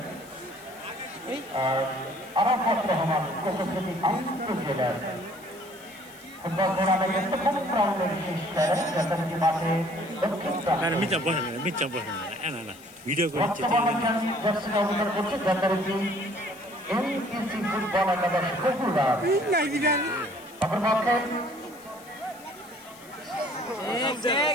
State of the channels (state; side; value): noise; left; hiss, 22 dB below the sound